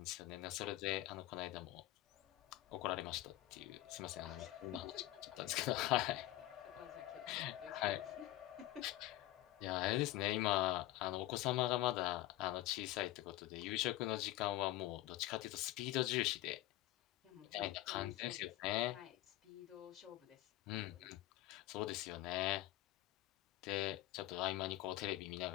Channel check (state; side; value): quieter; right; 15.8 dB